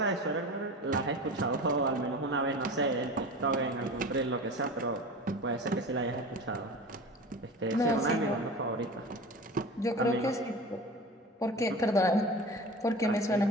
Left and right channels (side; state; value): both; normal; correlation 0.34